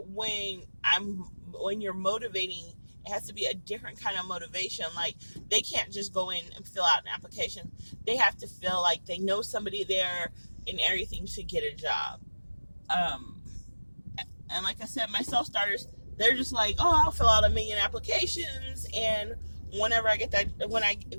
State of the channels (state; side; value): inverted; both; correlation -1.00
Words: you're motivating, it has to be a different kind of motivation. Like, they can't just go in and fill out an application. They have to feel like they know somebody there and everything to get a job. And like I said, my self-starters, they're just like, oh, I'll fill out 1,000,000 applications, and whenever I get that,